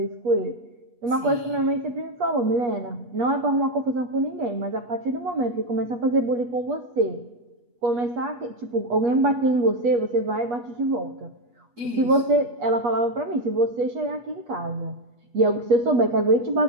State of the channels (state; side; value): late; left; 8.3 ms